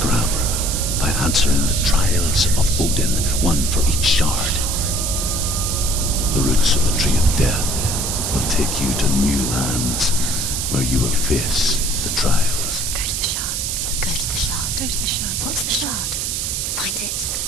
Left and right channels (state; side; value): noise; right; hiss, 1 dB below the sound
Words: by answering the trials of Odin, one for each shard. The roots of the tree of death will take you to new lands where you will face the trials. Go to the shards. Go to the shard. Go to the shards. What's the shard? Find it.